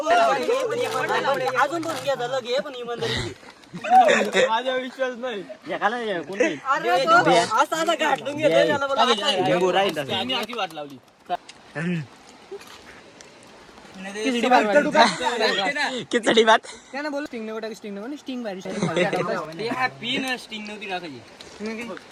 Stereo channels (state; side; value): identical; both; correlation 1.00